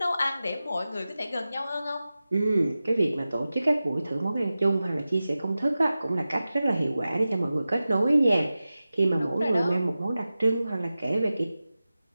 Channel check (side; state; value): both; inverted; correlation -0.95